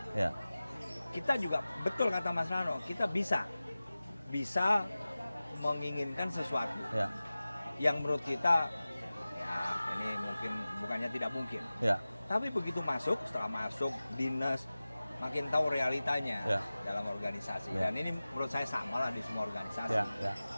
Ya. kita juga betul kata Mas Rano, kita bisa menginginkan sesuatu Ya. yang menurut kita ya ini mungkin bukannya tidak mungkin. Ya. Tapi begitu masuk, setelah masuk dinas makin tahu realitanya Ya. dalam organisasi. Ya. Dan ini menurut saya sama lah di semua organisasi. Ya. Ya.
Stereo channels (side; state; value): both; inverted; correlation -0.97